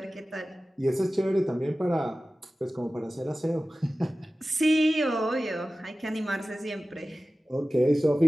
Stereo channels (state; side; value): normal; both; correlation 0.96